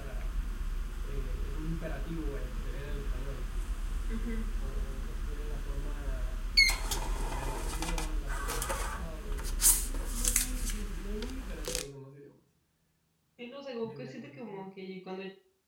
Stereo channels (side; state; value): both; identical; correlation 1.00